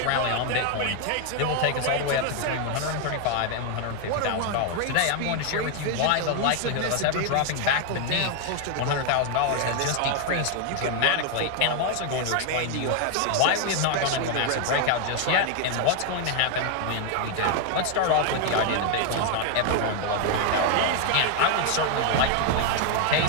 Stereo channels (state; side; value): different; both; correlation 0.00